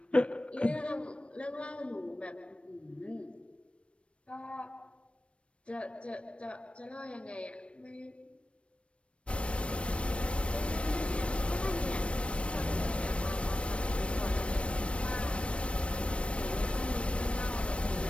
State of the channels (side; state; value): right; late; 0.060 ms